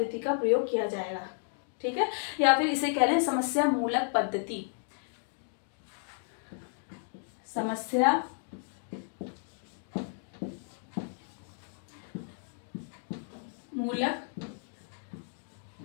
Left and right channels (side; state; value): right; silent; 56 dB below the other